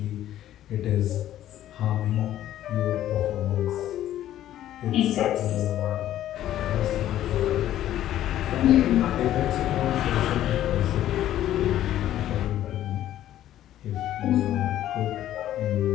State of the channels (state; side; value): quieter; right; 12.5 dB